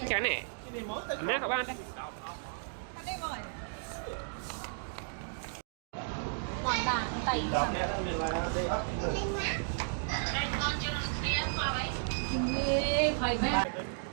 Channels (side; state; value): left; silent; digital silence